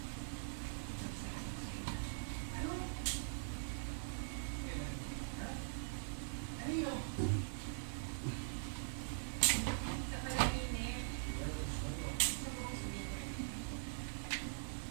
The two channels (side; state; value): left; silent; digital silence